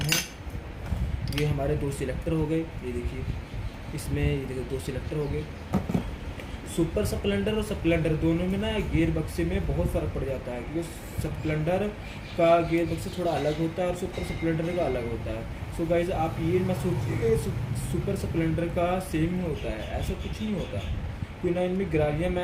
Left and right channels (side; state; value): both; identical; correlation 1.00